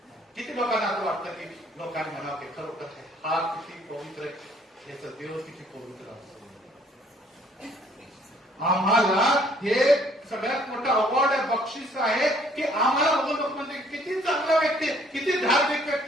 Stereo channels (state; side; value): normal; both; correlation 0.61